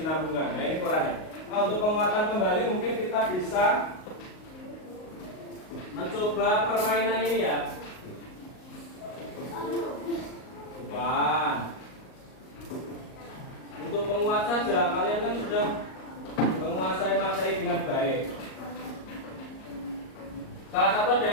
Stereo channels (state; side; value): late; right; 38 ms